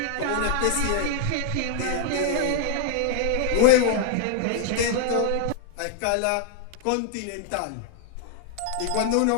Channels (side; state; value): both; different; correlation 0.00